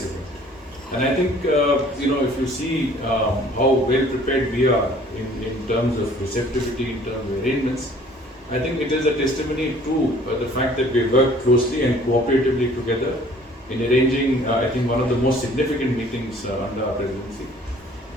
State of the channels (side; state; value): both; normal; correlation 0.54